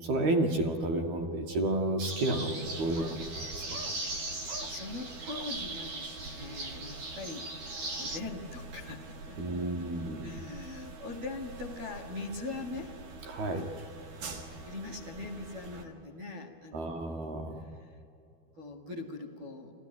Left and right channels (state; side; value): late; left; 12 ms